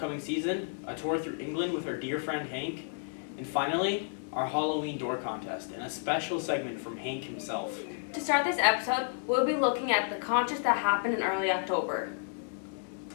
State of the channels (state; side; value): silent; right; digital silence